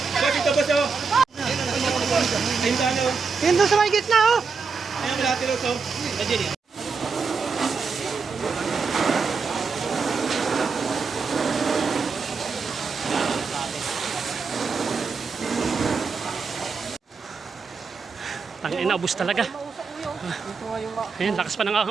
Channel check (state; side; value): quieter; left; 5.0 dB